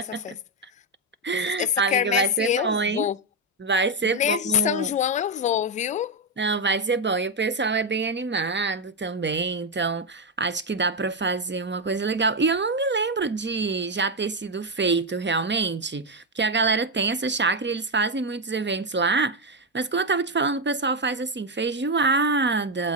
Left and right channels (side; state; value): both; normal; correlation 0.05